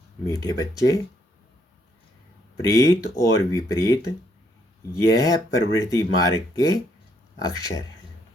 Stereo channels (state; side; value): normal; both; correlation 0.71